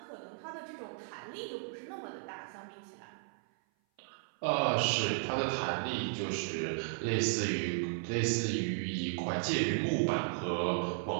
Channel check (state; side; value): silent; left; 55 dB below the other